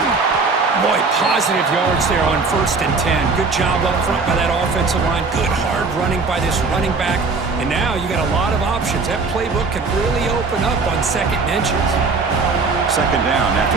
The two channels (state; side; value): quieter; left; 4.2 dB